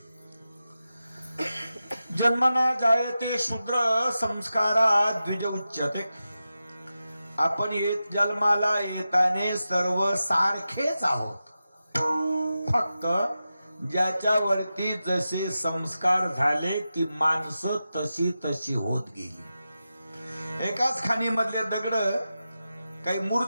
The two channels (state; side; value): inverted; both; correlation -0.92